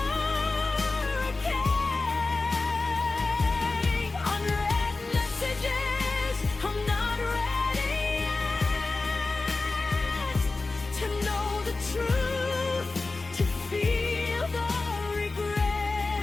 Unread messages, I'm not ready yet to know the truth, to feel the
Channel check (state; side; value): quieter; right; 3.5 dB